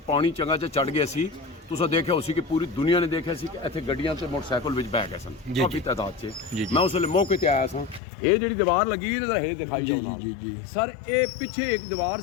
ਪਾਣੀ ਚੰਗਾ ਚ ਚੜ ਗਿਆ ਸੀ, ਤੁਸੀਂ ਦੇਖਿਆ ਉਸੇ ਕਿ ਪੂਰੀ ਦੁਨੀਆ ਨੇ ਦੇਖਿਆ ਸੀ ਕਿ ਇੱਥੇ ਗੱਡੀਆਂ ਤੇ ਮੋਟਰਸਾਈਕਲ ਵਿੱਚ ਬਹਿ ਗਏ ਸਨ ਕਾਫੀ ਤਾਦਾਦ 'ਚ। ਮੈਂ ਉਸ ਵੇਲੇ ਮੌਕੇ ਤੇ ਆਇਆ ਸਾਂ। ਇਹ ਜਿਹੜੀ ਦੀਵਾਰ ਲੱਗੀ ਇਹਦਾ ਇਹ ਦਿਖਾਈ ਜੀ ਸਰ, ਇਹ ਪਿੱਛੇ ਇੱਕ ਦੀਵਾਰ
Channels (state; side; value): drops out; right; at 8.0 s